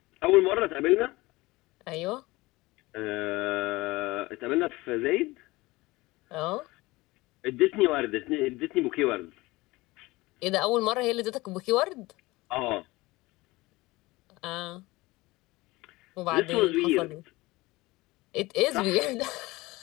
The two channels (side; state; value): right; quieter; 20.9 dB